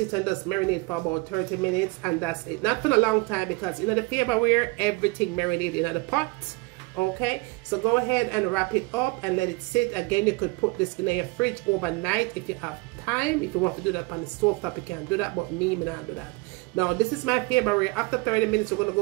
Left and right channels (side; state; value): left; quieter; 25.5 dB